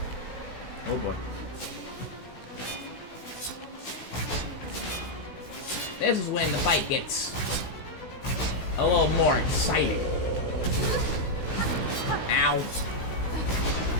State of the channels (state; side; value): late; right; 16 ms